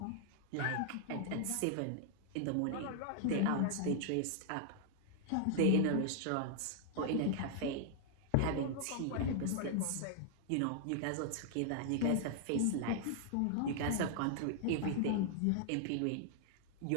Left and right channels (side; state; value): both; different; correlation 0.00